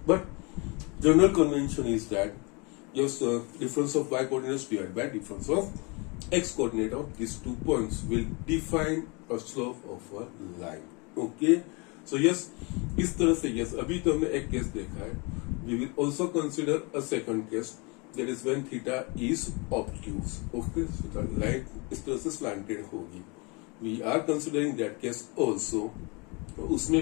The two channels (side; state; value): right; quieter; 29.6 dB